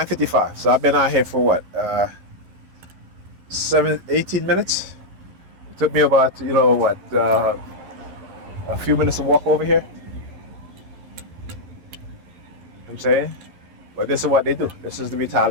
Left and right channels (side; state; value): left; late; 11 ms